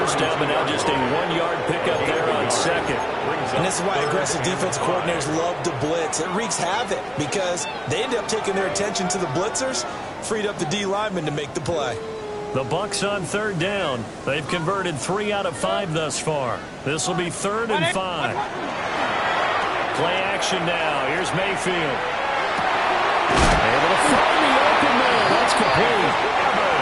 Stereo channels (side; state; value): both; identical; correlation 1.00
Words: down, but now just a 1-yard pickup there on 2nd. and this is why aggressive defense coordinators love to blitz. It wreaks havoc because they end up taking their attention to the blitzers, freed up the D lineman to make the play. The Bucs on 3rd down. They've converted 3 out of 5 thus far. This will be 3rd and 5. Play action now. Here's Mayfield. Able to find the open man. That's complete.